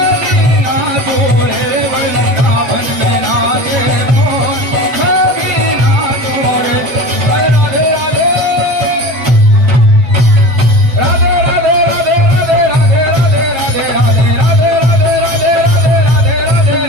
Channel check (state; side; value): late; left; 7.9 ms